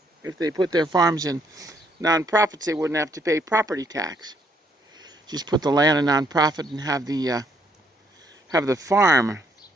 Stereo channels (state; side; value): normal; both; correlation 0.70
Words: If they put their farms in nonprofits, they wouldn't have to pay property tax. Just put the land in nonprofit and have the farm